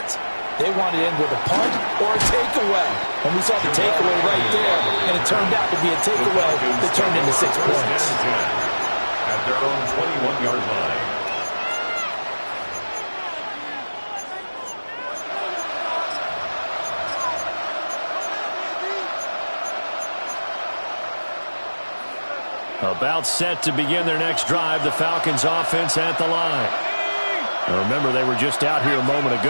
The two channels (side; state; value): both; inverted; correlation -1.00